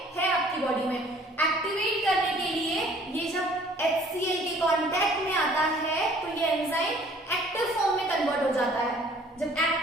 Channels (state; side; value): normal; both; correlation 0.55